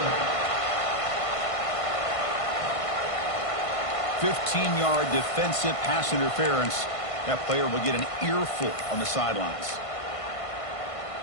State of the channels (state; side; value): late; right; 1.5 ms